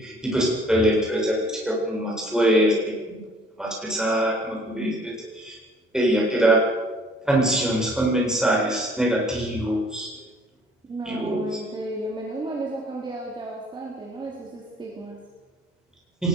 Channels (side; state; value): both; normal; correlation 0.57